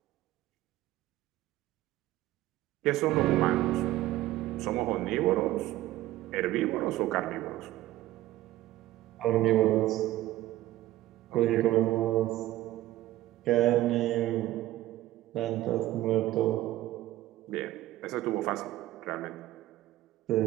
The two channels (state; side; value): quieter; left; 15.7 dB